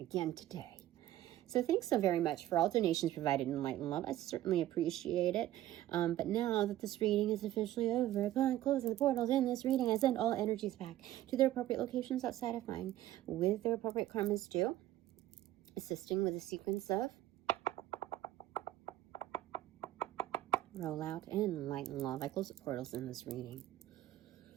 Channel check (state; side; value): quieter; left; 13.9 dB